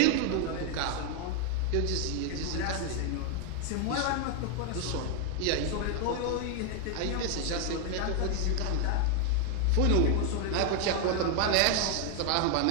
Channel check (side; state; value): both; different; correlation 0.00